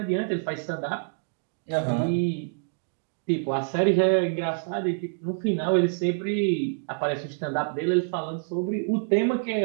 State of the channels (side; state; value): left; silent; digital silence